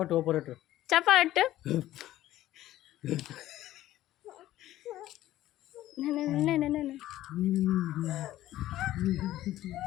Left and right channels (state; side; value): quieter; right; 14.4 dB